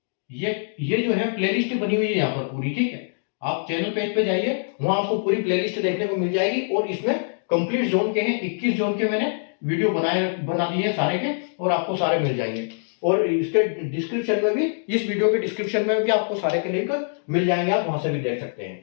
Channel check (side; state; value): right; silent; digital silence